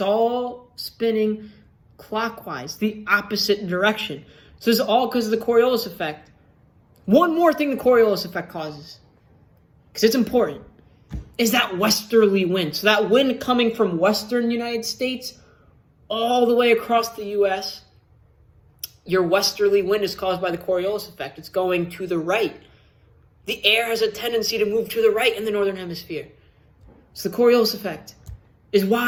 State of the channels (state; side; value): identical; both; correlation 1.00